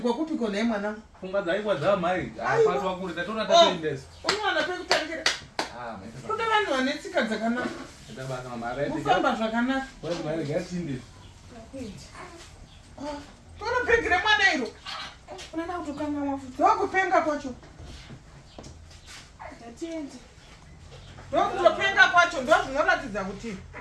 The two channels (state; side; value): identical; both; correlation 1.00